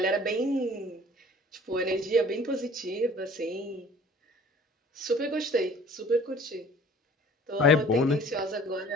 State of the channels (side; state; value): both; normal; correlation 0.50